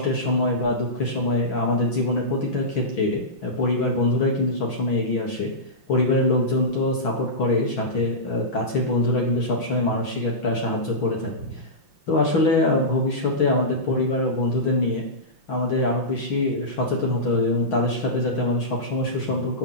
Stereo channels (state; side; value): late; right; 5.8 ms